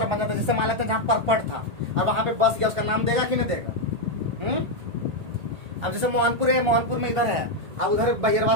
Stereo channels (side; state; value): left; late; 1.8 ms